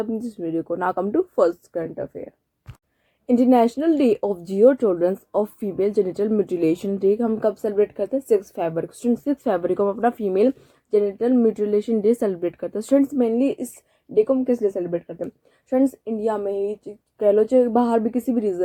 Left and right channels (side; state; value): both; identical; correlation 1.00